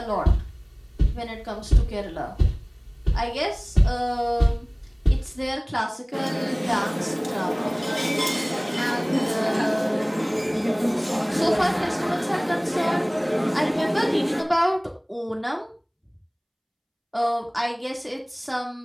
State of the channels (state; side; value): identical; both; correlation 1.00